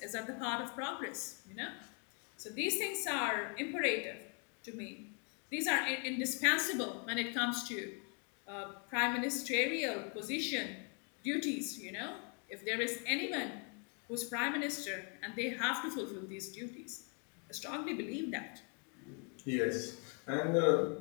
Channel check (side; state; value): right; quieter; 38.6 dB